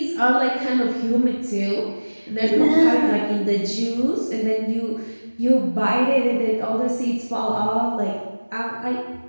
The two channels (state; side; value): inverted; both; correlation -1.00